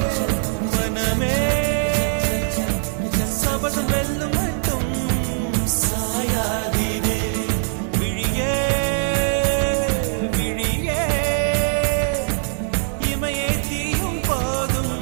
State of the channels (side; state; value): left; silent; 63 dB below the other